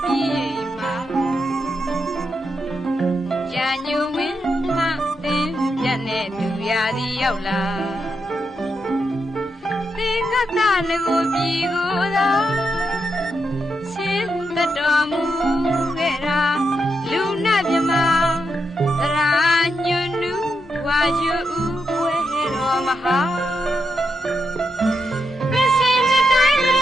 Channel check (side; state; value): both; normal; correlation 0.84